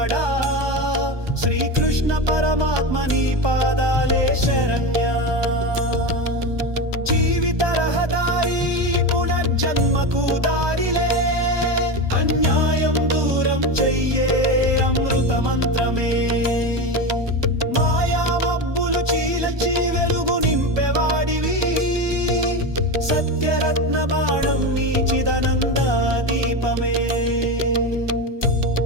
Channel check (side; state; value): left; late; 1.2 ms